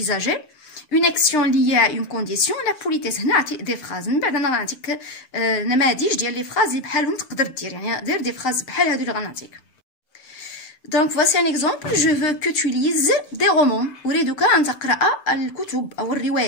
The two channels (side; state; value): right; late; 7.8 ms